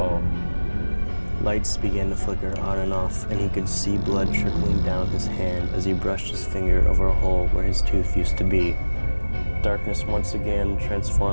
Lights began to flicker on and off, and he could see blood trickling down his hand as he brushed his finger over a hole where his tooth used to be. Darkness once again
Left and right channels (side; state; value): both; inverted; correlation -1.00